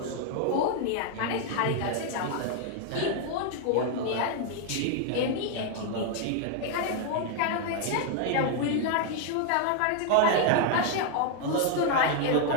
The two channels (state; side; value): different; both; correlation 0.00